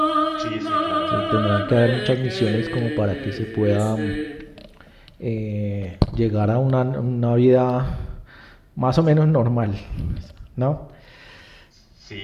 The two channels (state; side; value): identical; both; correlation 1.00